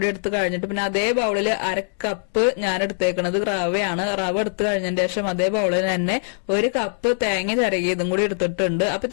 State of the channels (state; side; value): silent; right; digital silence